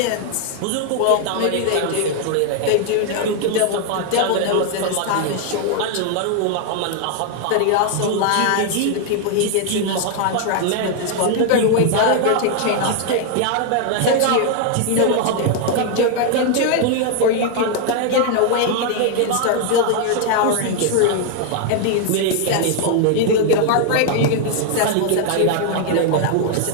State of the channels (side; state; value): both; different; correlation 0.00